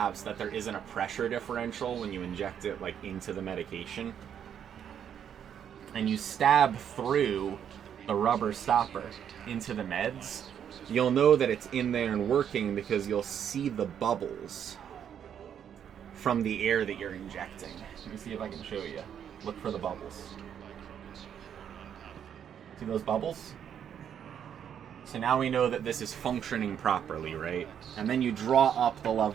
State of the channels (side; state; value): left; quieter; 8.8 dB